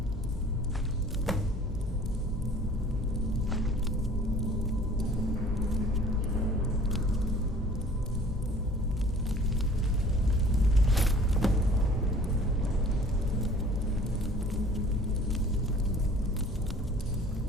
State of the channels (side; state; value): both; normal; correlation 0.50